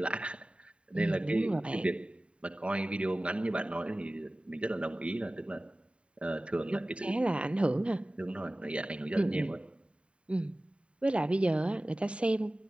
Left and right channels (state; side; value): late; left; 0.059 ms